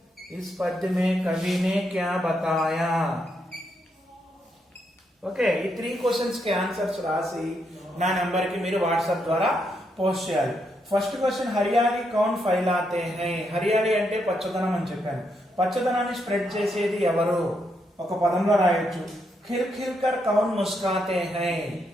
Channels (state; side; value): normal; both; correlation 0.79